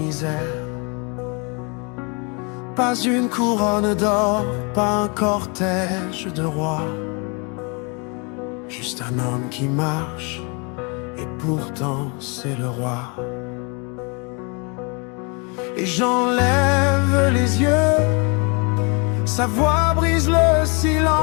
Pas une couronne d'or, pas un cortège de rois, juste un homme qui marche, et pourtant c'est le roi. Et j'enlève les yeux, sa voix brise le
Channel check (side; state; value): right; quieter; 32.9 dB